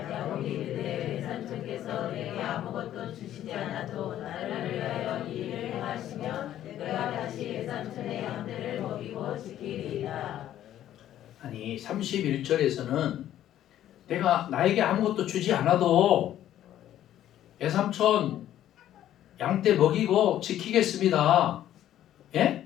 야곱이 이르되 외삼촌께서 내게 아무것도 주시지 않아도 나를 위하여 이 일을 행하시면 내가 다시 외삼촌의 양들을 먹이고 지키리이다. 아니 31절에서는 내가 나에게 아무것도 주지 않아도 외삼촌 양떼 먹이고 지키겠습니다.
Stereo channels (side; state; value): right; quieter; 12.0 dB